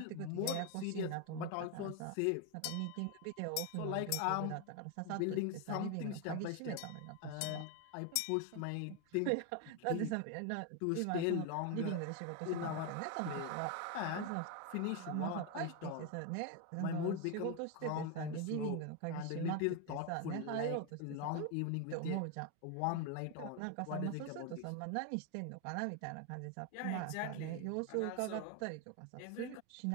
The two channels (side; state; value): both; different; correlation 0.01